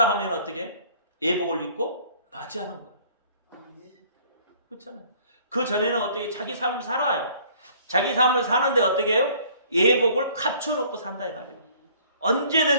하면 어떻게? 예복을 입고 맞이하는 거예요. 그렇잖아요. 그 전에는 어떻게 자기 삶을 살아요. 자기 삶을 사는데 어떻게 해요? 예복을 갖춰놓고 산다 이 말이에요.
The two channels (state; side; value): inverted; both; correlation -0.56